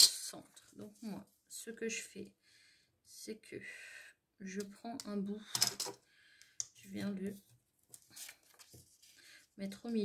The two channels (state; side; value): identical; both; correlation 1.00